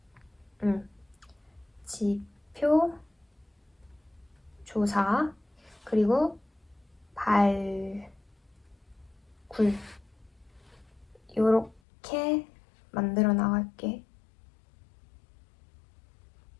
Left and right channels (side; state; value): right; drops out; at 11.8 s